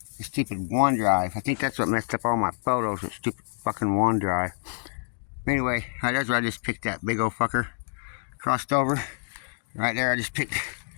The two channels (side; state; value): right; silent; digital silence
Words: The stupid OneDrive. I think that's what messed up all my photos, with stupid fucking OneDrive. Anyway, that's where I just picked that big old fucker. Crossed over. Right there, I just picked